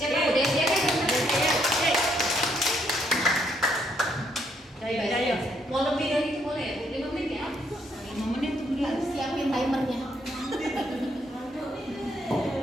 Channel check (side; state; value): both; normal; correlation 0.72